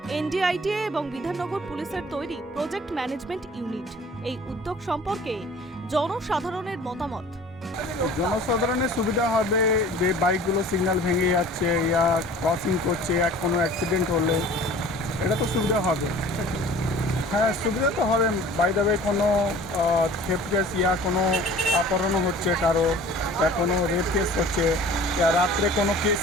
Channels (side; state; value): both; normal; correlation 0.46